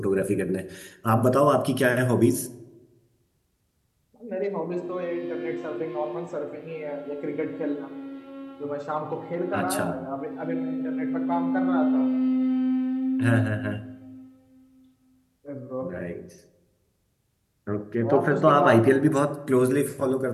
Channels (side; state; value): both; identical; correlation 1.00